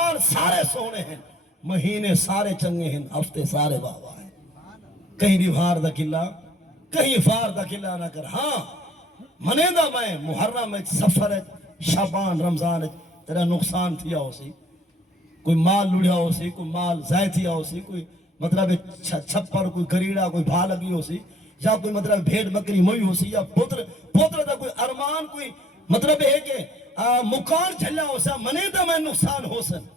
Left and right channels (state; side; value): normal; both; correlation 0.60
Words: سارے سونے ہیں مہینے سارے چنگے ہیں ہفتے سارے بابا ہیں کہیں ڈیمہار دا گلہ کہیں فار دا گلہ نہ کر ہاں منے دا میں محرم سفر شعبان رمضان تیرا نقصان تھیا ہو سی کوئی مال لڑیا ہو سی کوئی مال ضائع تھیا ہو سی کوئی مطلب چھپر کوئی گریڑا کوئی بھا لگی ہو سی یا کوئی مطلب بھیڑ بکری موئی ہو سی یا پوتر دا کوئی ارمان کوئی مطلب ہے کہ مکان چلا ہو سا منے دا میں نقصان ہو سن